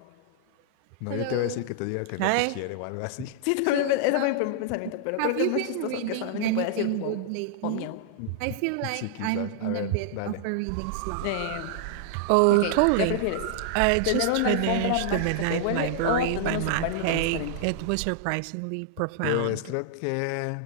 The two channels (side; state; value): both; different; correlation -0.01